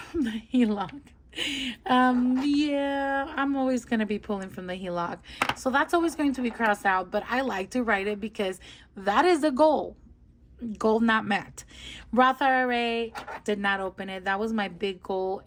the HELOC. Yeah, I'm always going to be pulling from the HELOC. So that's always going to be crossed out, but I like to write it because that is the goal. Goal not met. Roth IRA, did not open it. That was my big goal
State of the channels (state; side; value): identical; both; correlation 1.00